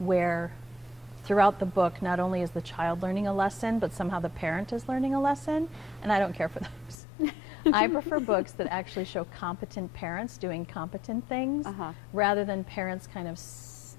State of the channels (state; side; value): drops out; right; at 7.0 s